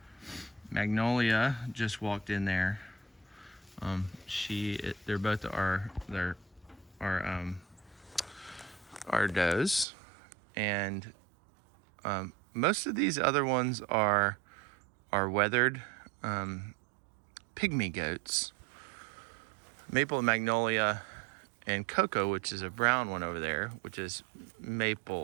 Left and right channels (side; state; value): left; drops out; at 9.9 s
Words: Magnolia just walked in there. They're both our does, and most of these other ones are weathered pygmy goats. Maple and Magnolia and Cocoa, which is a brown one over there, which is